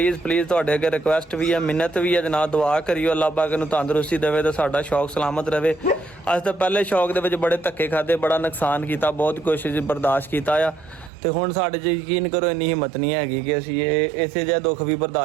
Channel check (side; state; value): left; drops out; at 11.1 s